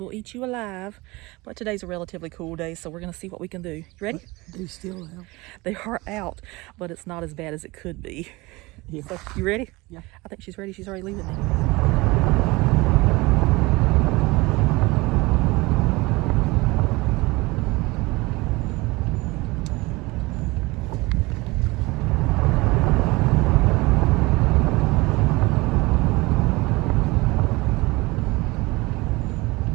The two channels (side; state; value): left; quieter; 22.7 dB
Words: eat you alive. But today's a relatively cool day, so we're going to see what we can do. You ready? They're still out. They are out, but it's not as bad as it could be. Yeah. So, you ready? Yeah. I think she's ready. She's already leaving me.